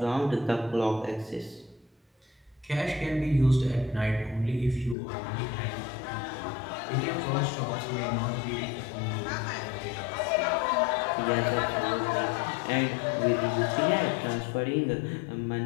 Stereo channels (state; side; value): drops out; right; at 5.0 s